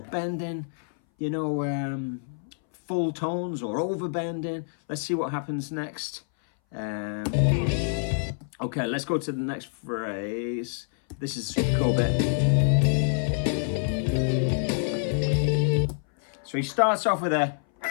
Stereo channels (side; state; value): right; silent; 59 dB below the other